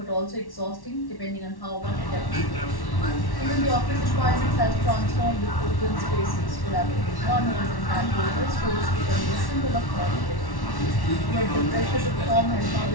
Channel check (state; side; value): late; right; 1.1 ms